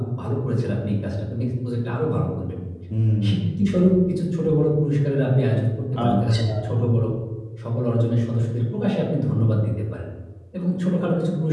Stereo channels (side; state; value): both; identical; correlation 1.00